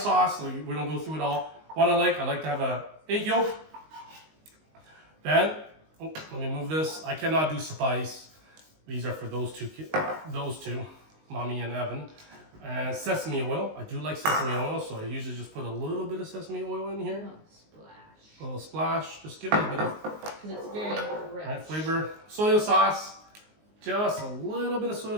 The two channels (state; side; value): late; left; 19 ms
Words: so we don't go through it all. What I like to have a egg yolk. Then, oh, let me move this. I cannot do spice. These are for those two, Mommy and Evan. And sesame oil. I do like sesame oil, so I usually just put a little bit of sesame oil in here. Oh, splash. A little splash. Just give it a bit of Because it's very rich. right, flavor. Soy sauce. Just a little bit of soy